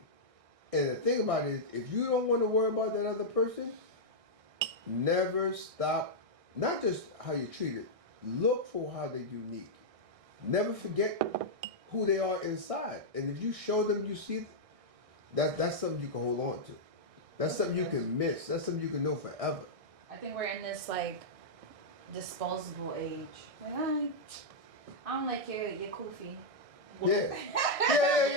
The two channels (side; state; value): left; late; 1.6 ms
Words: And the thing about it is, if you don't want to worry about that other person, never stop, not just how you treat it, look for how they're unique. Never forget who they are inside. And if you show them you see, that's something you can hold on to. That's something you can miss. That's something you can know forever. I think we're in this like disposable age. Like I don't like your kufi. Yeah.